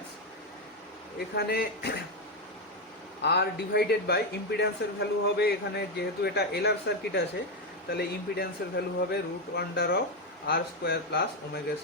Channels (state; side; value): normal; both; correlation 0.07